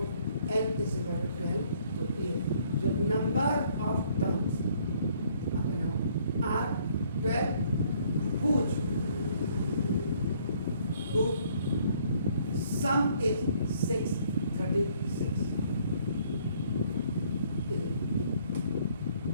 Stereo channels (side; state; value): both; inverted; correlation -0.63